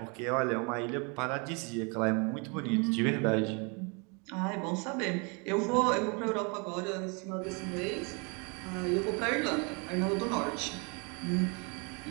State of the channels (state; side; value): quieter; left; 32.9 dB